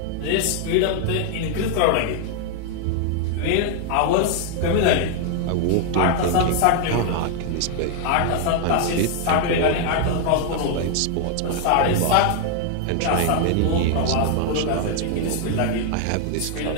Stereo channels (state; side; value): different; both; correlation 0.00